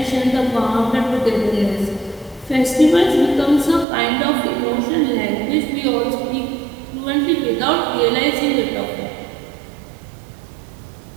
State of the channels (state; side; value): drops out; left; at 3.9 s